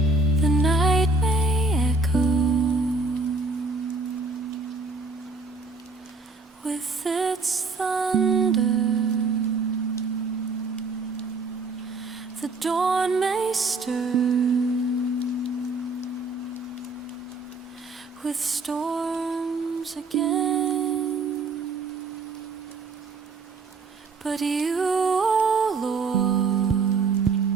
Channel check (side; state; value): left; quieter; 3.7 dB